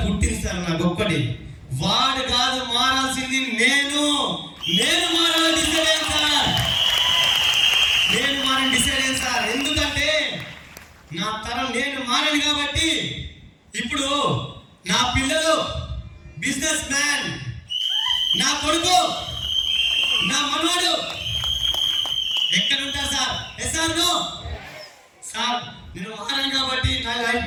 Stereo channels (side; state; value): both; identical; correlation 1.00